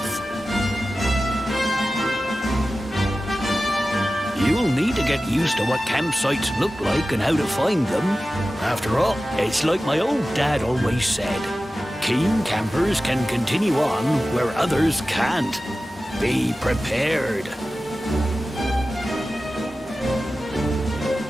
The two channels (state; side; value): normal; both; correlation 0.95